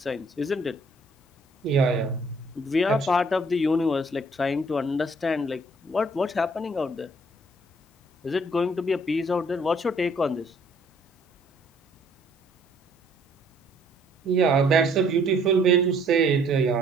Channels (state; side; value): normal; both; correlation 0.62